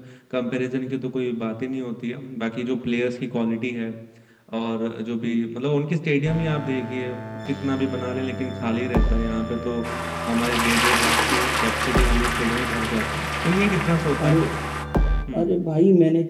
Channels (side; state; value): both; identical; correlation 1.00